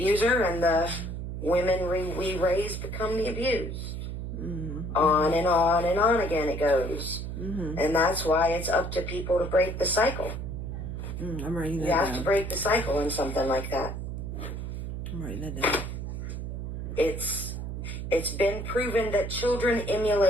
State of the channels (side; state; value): right; noise; hum, 5 dB below the sound